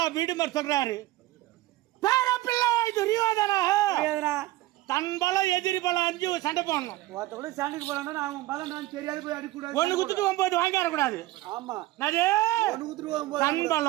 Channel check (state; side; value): quieter; left; 17.3 dB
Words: வீடுமர் சொல்றாரு, பேரப்பிள்ளை துரியோதனா தன் பலம் எதிரி பலம் 5 சண்டை போடணும். சண்டைக்கு போறான் அவன் பலம் தெரியாது போய் அடிக்கூடாது. 1 குத்துட்டு 9 வாங்கிட கூடாது. ஆமா தன்